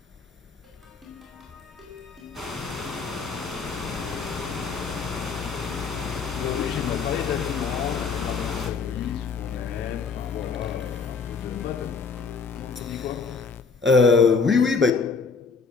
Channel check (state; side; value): quieter; right; 5.1 dB